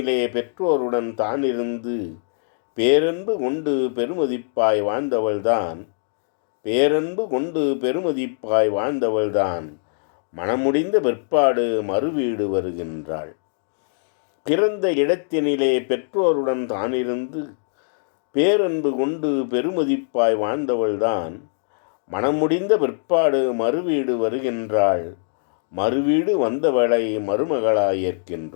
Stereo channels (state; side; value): silent; right; digital silence